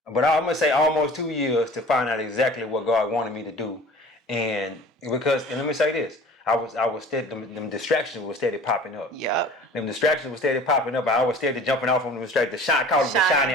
but I'm gonna say almost 2 years to find out exactly what God wanted me to do, and let me say this. I was steady, them distractions were steady popping up. Yep. Them distractions were steady popping up. I was steady jumping off on them distractions. Call it the shiny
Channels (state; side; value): normal; both; correlation 0.44